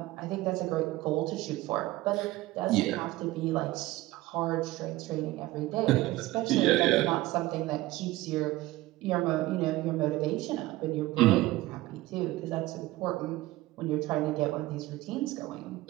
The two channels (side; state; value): left; quieter; 17.9 dB